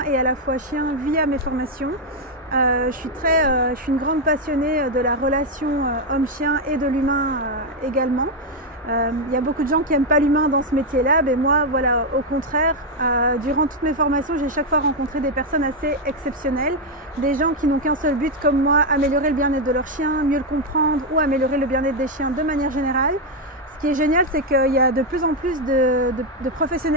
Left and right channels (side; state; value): both; normal; correlation 0.02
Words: et à la fois chien via mes formations. Je suis une grande passionnée de la relation homme-chien et de l'humain également. Il y a beaucoup de gens qui n'aiment pas l'humain dans ce métier-là, mais moi, voilà, au contraire, durant toutes mes formations, j'ai chaque fois rencontré des personnes assez exceptionnelles, des gens qui n'ont qu'un seul but, comme moi, améliorer le bien-être de leur chien, mieux le comprendre ou améliorer le bien-être des chiens de manière générale. Ce qui est génial, c'est qu'il y a de plus en plus de